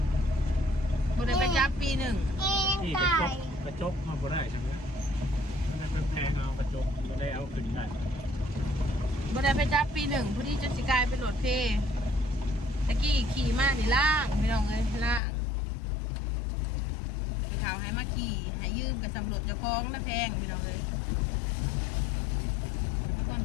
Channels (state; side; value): drops out; right; at 15.2 s